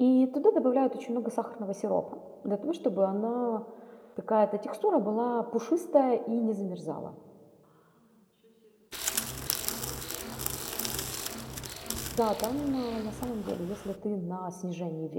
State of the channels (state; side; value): identical; both; correlation 1.00